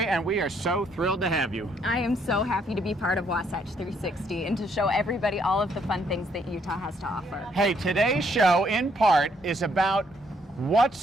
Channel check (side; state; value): both; normal; correlation 0.69